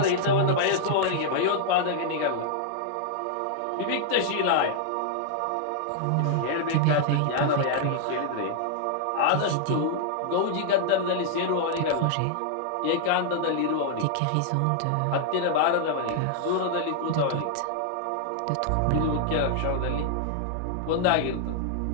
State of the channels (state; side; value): different; both; correlation -0.01